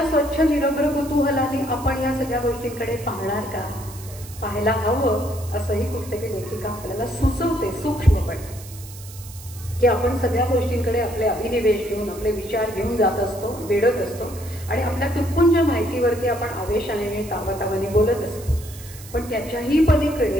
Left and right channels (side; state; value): right; noise; hiss, 17 dB below the sound